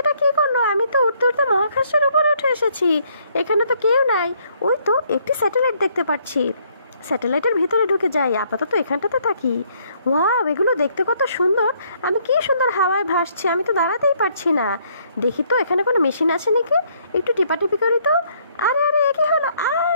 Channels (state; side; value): inverted; both; correlation -0.67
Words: এটা কি করলো? আমি তো উঠতে উঠতে মহাকাশের উপরে উঠে এসেছি। এখানে তো কেউ নাই। ওই তো একটি স্যাটেলাইট দেখতে পাচ্ছি। স্যাটেলাইটের ভিতরে ঢুকে যাই, আপাতত এখানটাতে থাকি। ওয়াও, এগুলো দেখতে কত সুন্দর! আমি কি সুন্দর হাওয়ায় ভাসছি, আমি তো দাঁড়াতেই পারছি না। দেখি তো এখানে কোনো মেশিন আছে নাকি, একটু টিপাটিপি করি তো। আরে আরে, এ কি হলো?